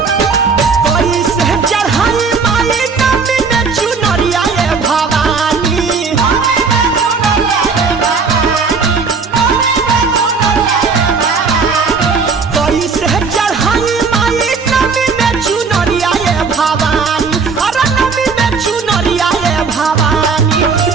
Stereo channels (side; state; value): left; quieter; 5.0 dB